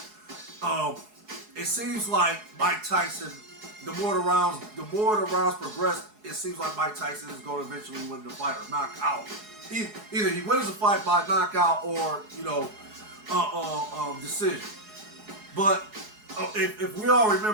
It seems like Mike Tyson, the more the rounds progress, it seems like Mike Tyson is going to eventually win the fight or knock out. Either he wins the fight by knockout or decision. But if we all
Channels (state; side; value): late; left; 4.7 ms